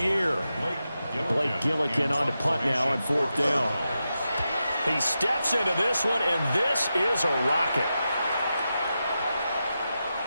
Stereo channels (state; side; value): inverted; both; correlation -0.89